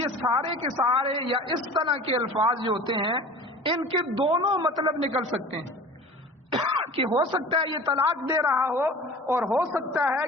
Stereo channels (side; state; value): both; normal; correlation 0.40